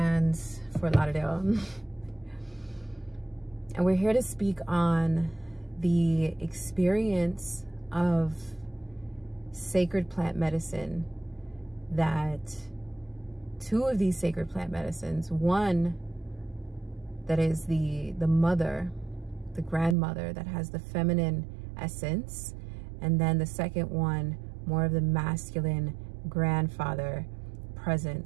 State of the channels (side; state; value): left; drops out; at 20.0 s